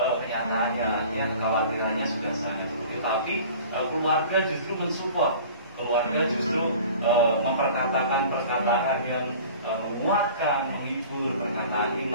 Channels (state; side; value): inverted; both; correlation -0.44